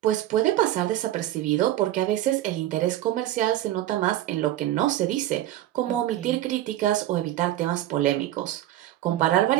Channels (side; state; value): left; quieter; 13.7 dB